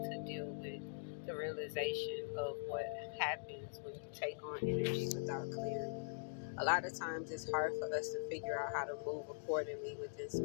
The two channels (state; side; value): silent; right; digital silence